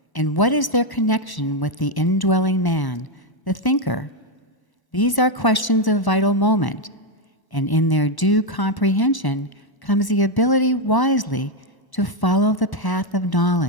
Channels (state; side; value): late; right; 1.0 ms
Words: And what is their connection with the indwelling man, the thinker? These are questions of vital moment, and in their due comprehension comes the ability wisely to follow the path of